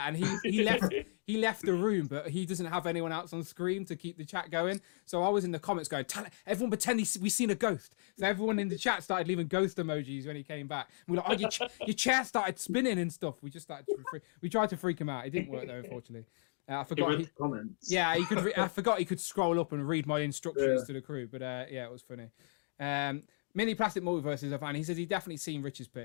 and he left the room, but he doesn't have anyone else on screen to keep the chat going. So I was in the comments going, everyone pretend we seen a ghost. So everyone in the chat started leaving ghost emojis when he came back. And we're like, oh, your chair started spinning and stuff. We just started. We tried to freak him out. It didn't work though, unfortunately. I forgot. Comments. Yeah, he could. I forgot he could scroll up and read my instructions to the crew. But yeah, it was funny. Mini Plastic Multiverse is a fan. He says he definitely seen Rich's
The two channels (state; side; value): silent; right; digital silence